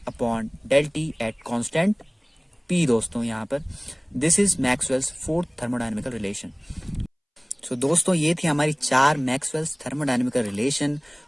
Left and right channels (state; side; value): identical; both; correlation 1.00